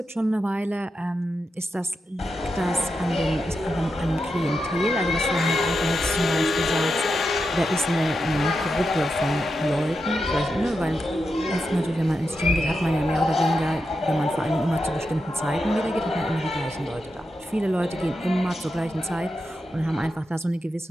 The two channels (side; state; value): both; normal; correlation 0.87